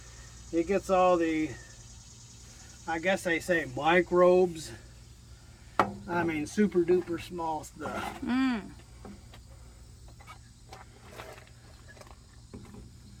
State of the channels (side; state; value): both; identical; correlation 1.00